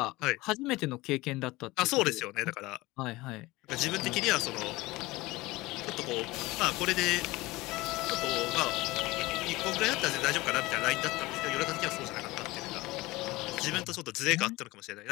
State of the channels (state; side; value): quieter; right; 20.5 dB